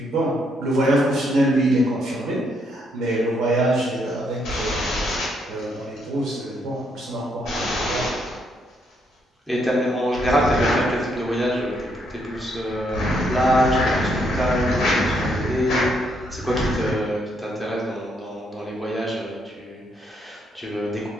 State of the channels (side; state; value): both; normal; correlation 0.74